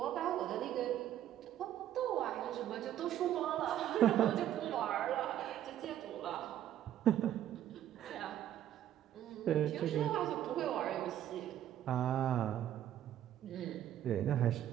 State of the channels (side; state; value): left; quieter; 11.5 dB